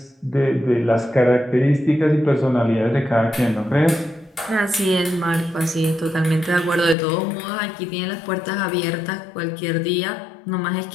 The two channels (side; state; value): right; drops out; at 7.0 s